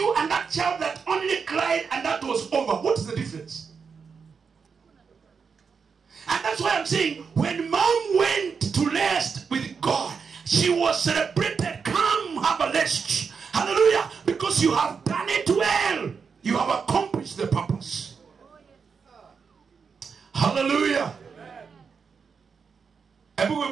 and that child that only cried and that was over. What is the difference? And that's why I'm saying, when mom went to rest with God, she was celebrated. Come, have a rest. Hallelujah. Because you have done it well. You have accomplished the purpose. Hallelujah. Hebu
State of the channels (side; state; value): left; quieter; 5.8 dB